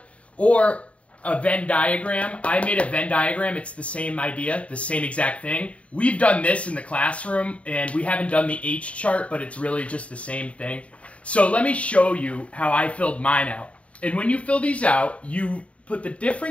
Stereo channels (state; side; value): late; right; 0.064 ms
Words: or a Venn diagram. I made a Venn diagram. It's the same idea, the same exact thing. We've done this in the classroom, and we haven't done the H chart, but it's really just the same thing. So let me show you how I filled mine out. And when you fill these out, you put the